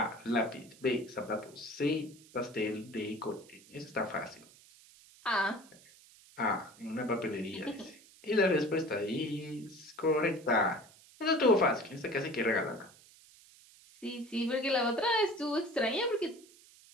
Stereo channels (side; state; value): right; noise; hiss, 24 dB below the sound